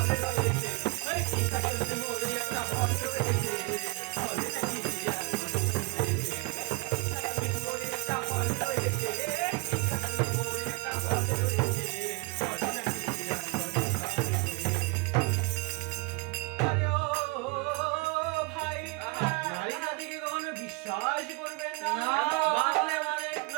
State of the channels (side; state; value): left; quieter; 24.6 dB